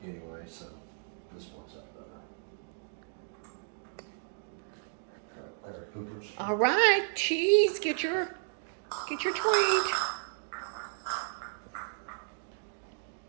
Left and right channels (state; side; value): silent; left; digital silence